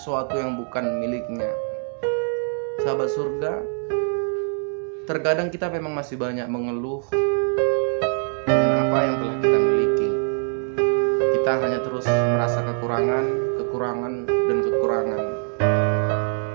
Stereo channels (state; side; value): silent; left; 56 dB below the other